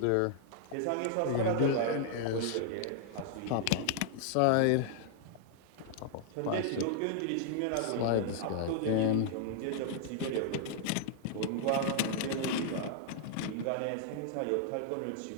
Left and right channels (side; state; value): both; different; correlation -0.01